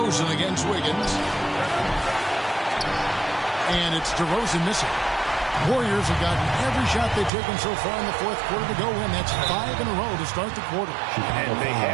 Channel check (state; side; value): drops out; left; at 7.3 s